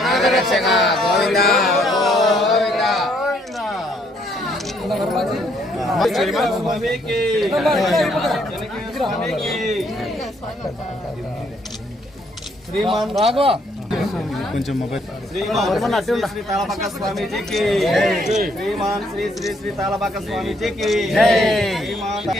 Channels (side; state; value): both; normal; correlation 0.69